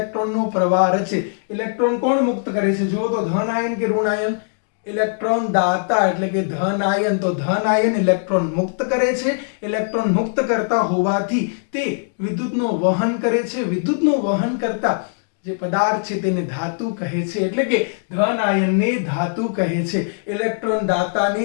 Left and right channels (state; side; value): silent; right; digital silence